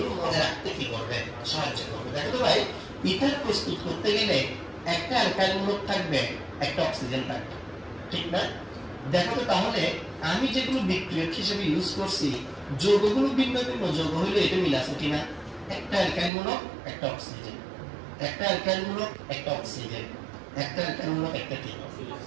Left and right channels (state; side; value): drops out; left; at 16.3 s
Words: মনে রাখতে কি করবে, সাহায্য করবে। দেখো তো ভাই, ইথার প্রস্তুত করতে গেলে একটা অ্যালকাইল মূলক থাকবে, একটা অক্সিজেন থাকবে, ঠিক না? দেখো তো তাহলে আমি যেগুলো বিক্রিয়ক হিসেবে ইউজ করছি, যৌগগুলো ভিন্ন ভিন্ন যৌগ হইলে এটা মিল আছে কিনা, একটা অ্যালকাইল মূলক একটা অক্সিজেন, একটা অ্যালকাইল মূলক একটা অক্সিজেন, একটা অ্যালকাইল মূলক একটা কি,